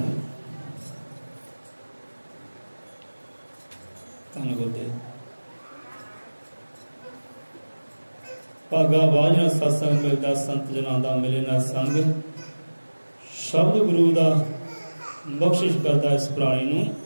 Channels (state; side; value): inverted; both; correlation -1.00